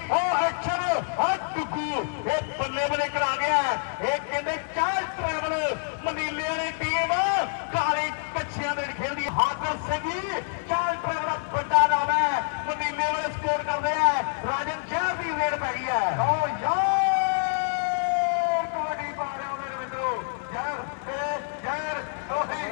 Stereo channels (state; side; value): silent; right; digital silence